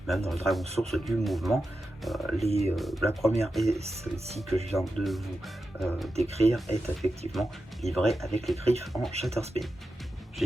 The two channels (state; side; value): normal; both; correlation 0.90